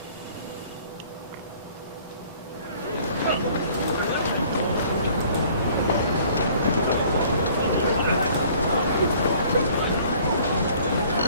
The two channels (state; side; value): inverted; both; correlation -0.55